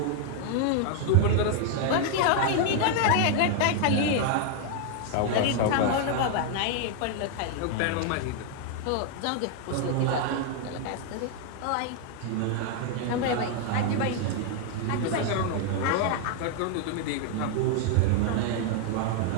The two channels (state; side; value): different; both; correlation 0.00